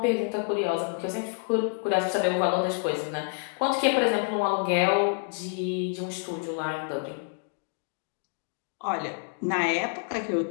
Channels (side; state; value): right; silent; 59 dB below the other